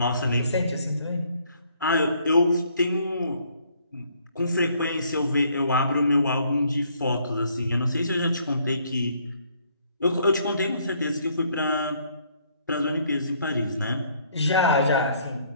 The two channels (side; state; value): both; inverted; correlation -0.65